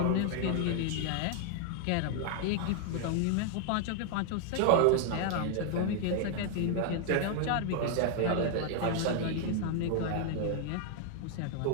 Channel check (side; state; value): both; different; correlation 0.00